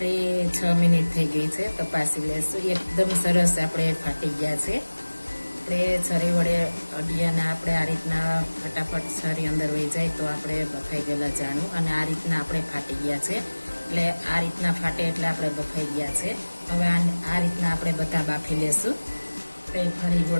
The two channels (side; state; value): both; inverted; correlation -1.00